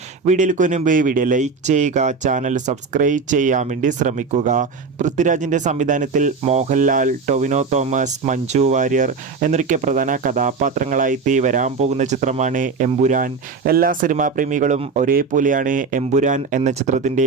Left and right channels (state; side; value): quieter; left; 4.8 dB